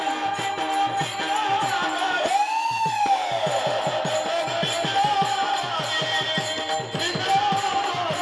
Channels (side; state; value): both; identical; correlation 1.00